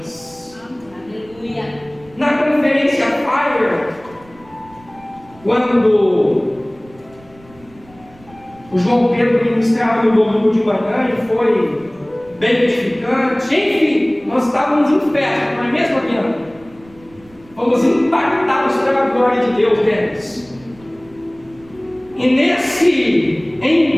Aleluia. Na conferência Fire, quando o João Pedro ministrava no domingo de manhã e foi bem edificante, enfim, nós estávamos em festa, não é mesmo, Adriana? Fomos impactados pela glória de Deus deles. E nesse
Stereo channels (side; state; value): right; noise; rumble, 26 dB below the sound